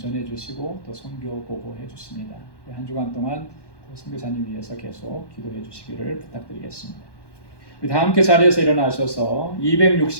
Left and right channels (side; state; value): right; late; 1.1 ms